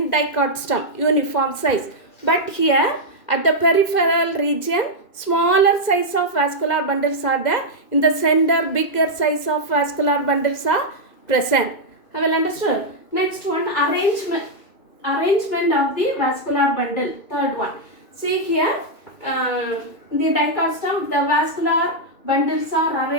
dicot stem, uniform size. But here at the peripheral region, smaller size of vascular bundles are there. In the center, bigger size of vascular bundles are present. Have you understood? Next one, arrangement of the vascular bundle. Third one. See here, the dicot stem, the vascular bundles are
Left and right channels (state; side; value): late; right; 2.1 ms